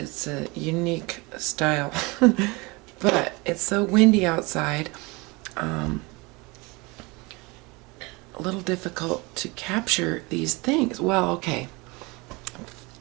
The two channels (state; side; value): quieter; left; 25.7 dB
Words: a unique style, but it's so windy outside, a little difficult to capture these things. Well, okay,